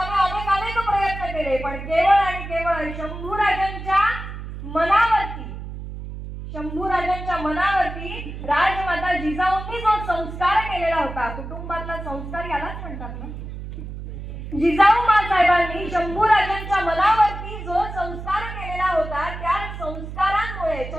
अनेक प्रयत्न केले, पण केवळ आणि केवळ शंभूराजांच्या मनावरती राजमाता जिजाऊंनी जो संस्कार केलेला होता, कुटुंबातला संस्कार यालाच म्हणतात ना. जिजाऊ साहेबांनी शंभूराजांच्या मनावरती जो संस्कार केलेला होता, त्या संस्कारांमुळे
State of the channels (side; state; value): right; noise; hum, 9 dB below the sound